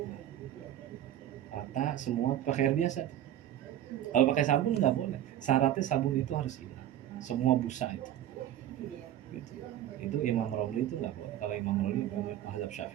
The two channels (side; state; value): left; quieter; 11.9 dB